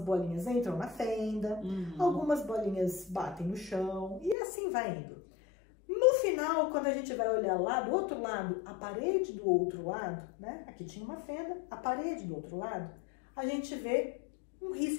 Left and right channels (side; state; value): right; drops out; at 4.4 s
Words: entram na fenda, algumas bolinhas batem no chão e assim vai indo. No final, quando a gente vai olhar lá do outro lado, a parede do outro lado, né? Aqui tinha uma fenda, a parede do outro lado, a gente vê um